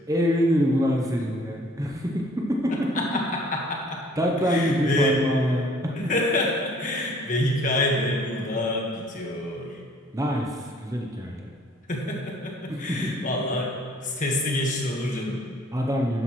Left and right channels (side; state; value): both; normal; correlation 0.57